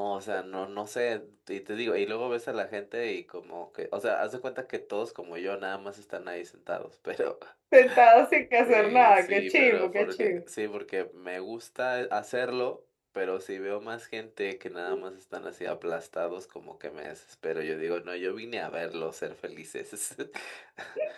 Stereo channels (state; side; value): identical; both; correlation 1.00